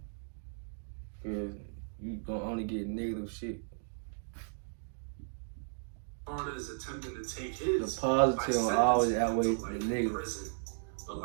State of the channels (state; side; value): silent; left; digital silence